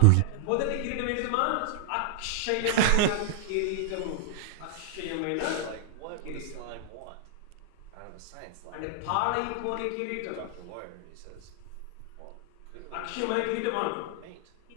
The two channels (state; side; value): different; both; correlation -0.01